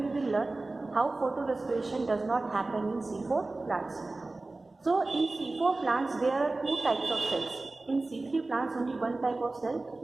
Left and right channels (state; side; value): quieter; left; 3.2 dB